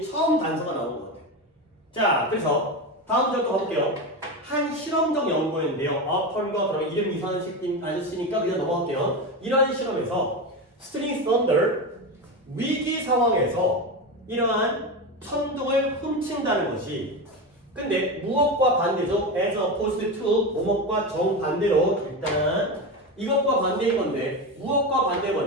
처음 단서가 나온 것 같아요. 자, 그래서 다음 절도 가볼게요. 한 실험적 연구였는데요. 어펀과 그러면 이름 이상한 아저씨니까 그냥 넘어갈게요. 이러한 실험에서 스틸링 썬더, 위기 상황에서 이러한 천둥을 훔친다는 것이, 근데 무엇과 반대죠? as opposed to 뭐뭐과 정반대로 일단 이것과 반대인 건데 무엇과 반대인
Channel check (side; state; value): both; normal; correlation 0.19